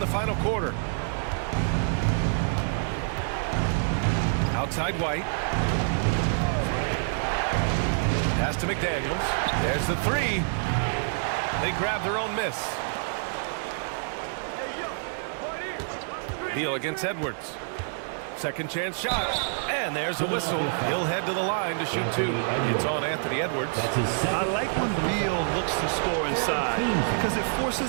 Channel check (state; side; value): silent; left; digital silence